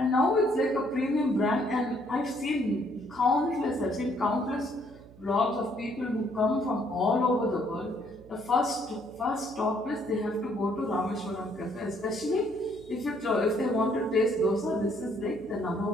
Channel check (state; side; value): noise; right; hum, 21 dB below the sound